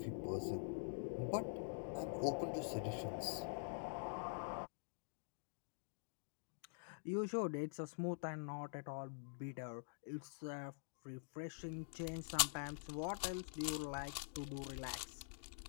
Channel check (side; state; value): right; silent; digital silence